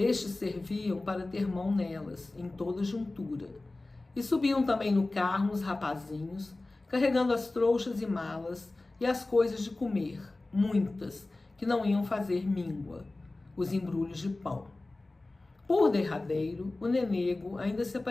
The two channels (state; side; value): quieter; right; 3.0 dB